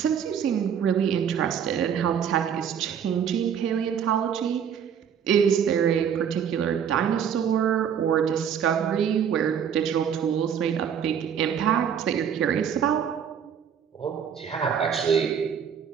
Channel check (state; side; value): quieter; left; 8.1 dB